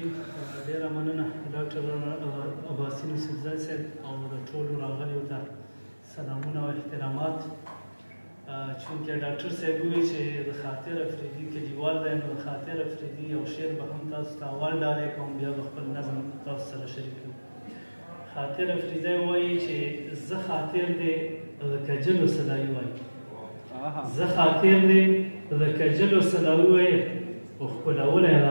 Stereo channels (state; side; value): inverted; both; correlation -1.00